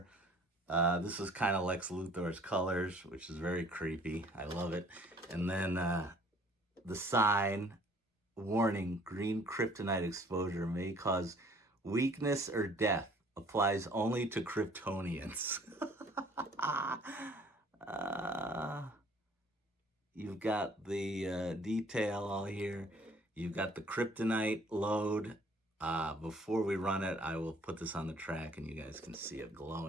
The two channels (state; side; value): normal; both; correlation 0.56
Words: This is kind of Lex Luthor's colors, which is very creepy. I love it. And then the sign, warning, green kryptonite exposure may cause weakness or death. Applies only to Kryptonians. You've got the detail all here. You've got the kryptonite load. Before we run it, I will put this on the track and you guys can see it